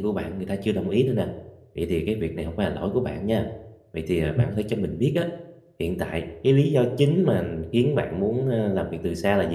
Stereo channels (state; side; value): identical; both; correlation 1.00